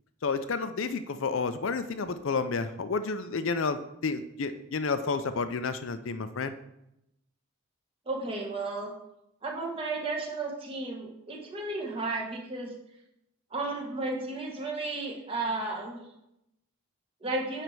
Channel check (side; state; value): both; normal; correlation 0.05